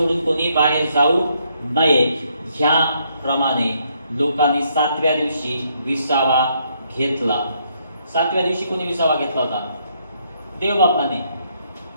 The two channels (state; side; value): inverted; both; correlation -0.72